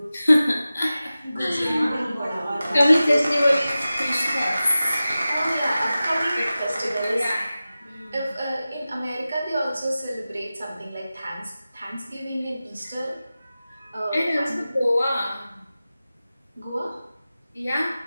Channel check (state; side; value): inverted; both; correlation -0.95